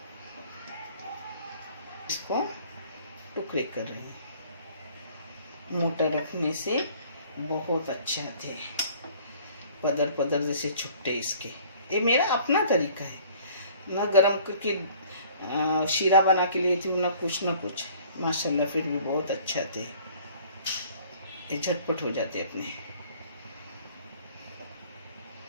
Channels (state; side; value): inverted; both; correlation -0.53